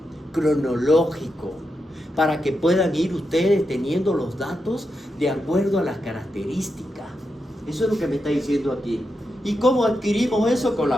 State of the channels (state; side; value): normal; both; correlation 0.86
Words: cronológico, para que puedan ir ustedes teniendo los datos de acuerdo a las características. Eso es lo que me está diciendo aquí. ¿Y cómo adquirimos eso? Con